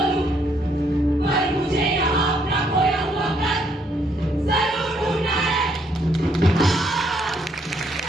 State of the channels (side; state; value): both; normal; correlation 0.71